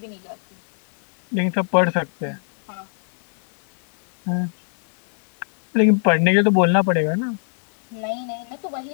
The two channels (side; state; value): right; silent; digital silence